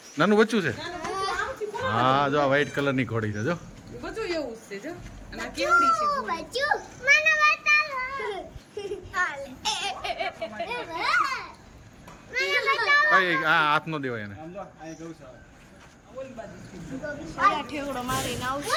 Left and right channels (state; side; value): identical; both; correlation 1.00